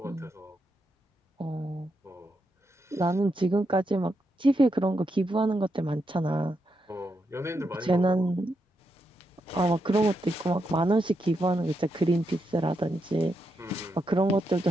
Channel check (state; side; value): normal; both; correlation 0.83